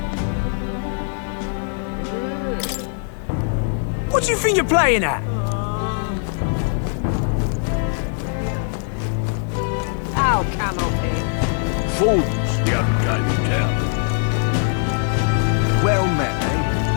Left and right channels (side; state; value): right; silent; 57 dB below the other